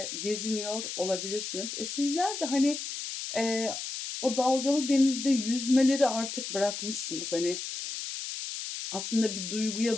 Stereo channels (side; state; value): left; noise; hiss, 6 dB below the sound